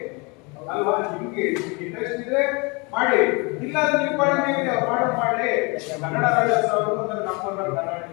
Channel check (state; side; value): quieter; right; 29.1 dB